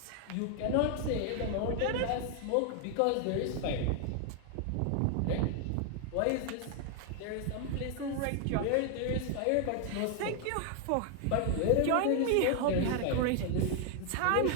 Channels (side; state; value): both; different; correlation 0.00